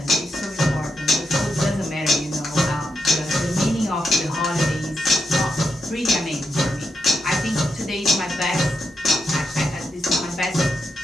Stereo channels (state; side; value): normal; both; correlation 0.82